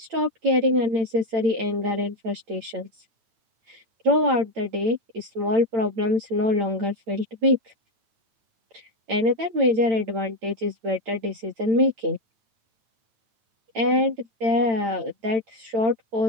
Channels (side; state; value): left; late; 8.8 ms